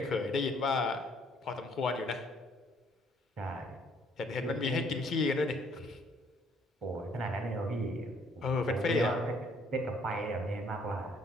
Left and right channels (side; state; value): both; normal; correlation 0.64